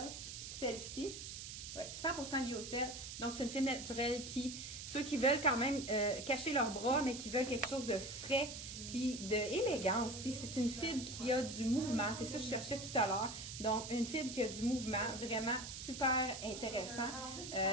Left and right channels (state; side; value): noise; right; hiss, 9 dB below the sound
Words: Celle-ci, ouais, 100% lyocell. Donc, c'est une fibre naturelle ceux qui veulent quand même cacher leurs bras, mais qui veulent quelque chose de frais, puis d'élégant aussi. C'est une fibre qui a du mouvement. C'est ça que je cherchais tout à l'heure. Donc, une fibre qui a du mouvement, vraiment super intéressant.